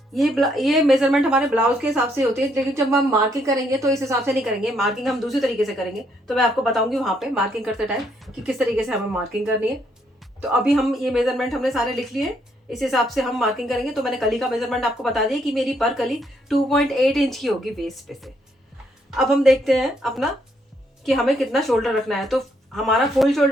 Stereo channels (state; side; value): normal; both; correlation 0.73